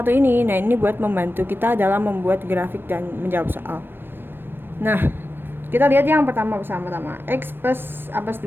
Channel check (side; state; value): left; late; 0.10 ms